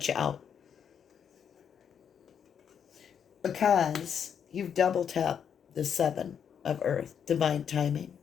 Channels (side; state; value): right; quieter; 7.9 dB